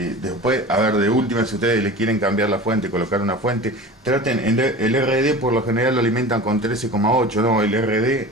de última, si ustedes le quieren cambiar la fuente, colocar una fuente, traten, el RD por lo general lo alimentan con 13,8, no, el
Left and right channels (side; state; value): both; normal; correlation 0.35